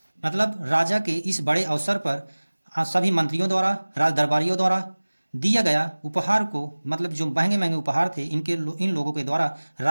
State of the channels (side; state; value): both; inverted; correlation -1.00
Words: मतलब राजा के इस बड़े अवसर पर सभी मंत्रियों द्वारा, राज दरबारियों द्वारा दिया गया उपहार को, मतलब जो महंगे महंगे उपहार थे इन लोगों के द्वारा